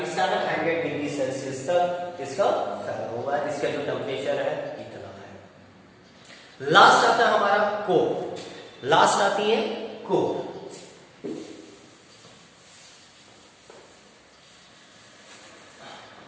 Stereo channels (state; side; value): identical; both; correlation 1.00